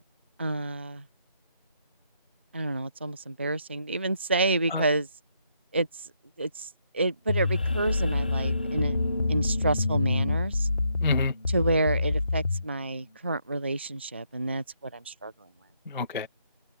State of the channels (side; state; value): both; inverted; correlation -0.75